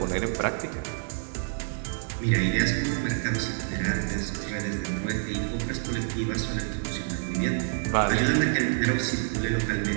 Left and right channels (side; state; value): left; silent; digital silence